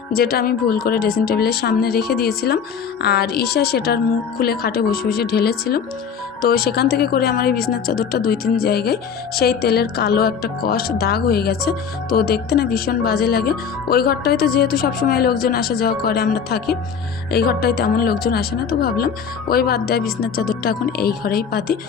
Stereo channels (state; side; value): quieter; right; 6.8 dB